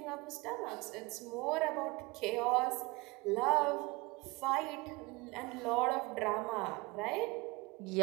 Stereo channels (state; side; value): quieter; left; 24.4 dB